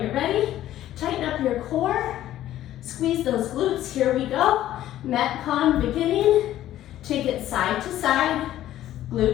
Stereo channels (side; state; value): right; quieter; 13.1 dB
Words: ready. Tighten up your core, squeeze those glutes. Here we go. MetCon beginning. Take it side to side,